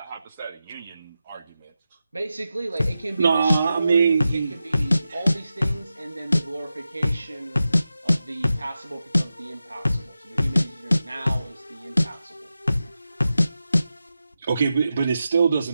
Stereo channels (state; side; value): inverted; both; correlation -0.91